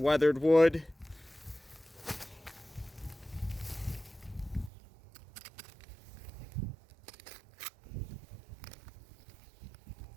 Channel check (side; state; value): left; drops out; at 4.7 s